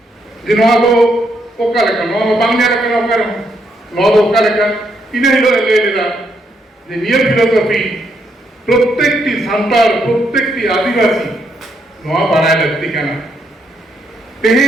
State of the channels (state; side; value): normal; both; correlation 0.76